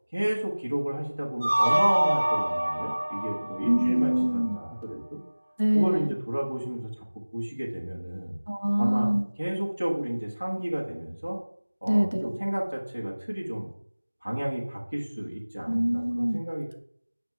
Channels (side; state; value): both; inverted; correlation -1.00